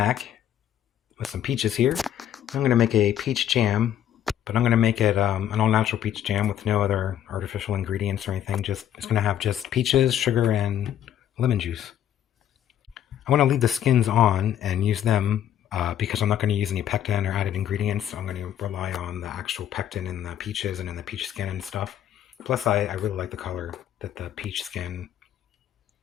with some peaches here. I'm going to make a peach jam, but I'm going to make it an all-natural peach jam with no other artificial ingredients or anything. It's going to have just peaches, sugar, and lemon juice. I want to leave the skins on and use them because I'm not going to use any pectin or added ingredients. So I'm going to rely on the actual pectin in the peaches and in the peach skin and stuff. Plus, I really like the color that the peach skin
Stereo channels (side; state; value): right; quieter; 10.5 dB